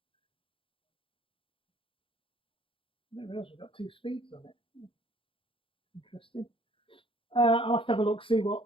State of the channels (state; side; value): late; right; 0.26 ms